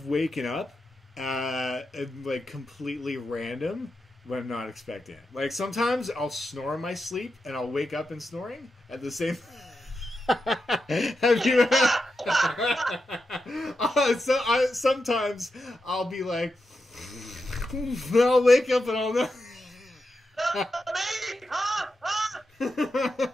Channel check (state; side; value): normal; both; correlation 0.88